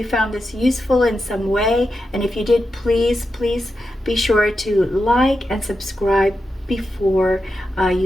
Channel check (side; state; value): both; normal; correlation 0.88